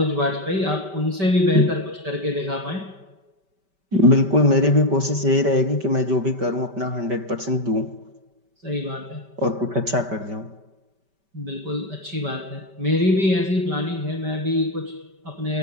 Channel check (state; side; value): late; left; 5.2 ms